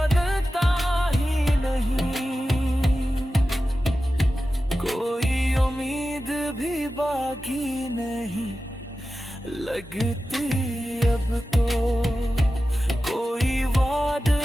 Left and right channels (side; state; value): both; normal; correlation 0.94